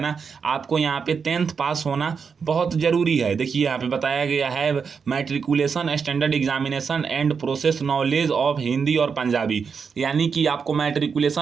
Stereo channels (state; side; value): quieter; left; 5.9 dB